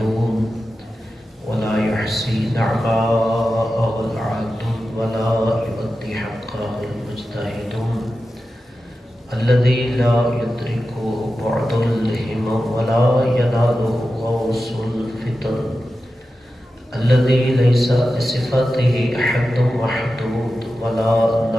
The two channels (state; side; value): normal; both; correlation 0.92